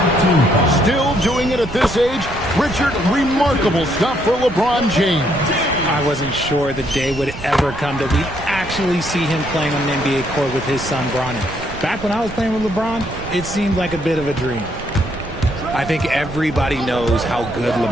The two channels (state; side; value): noise; right; rumble, 12 dB below the sound